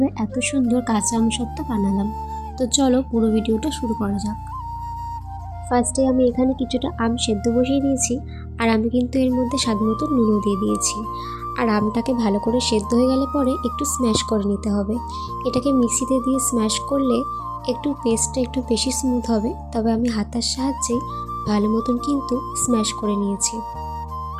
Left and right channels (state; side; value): identical; both; correlation 1.00